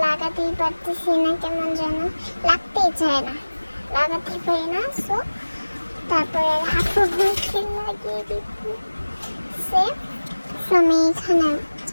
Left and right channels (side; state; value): both; inverted; correlation -1.00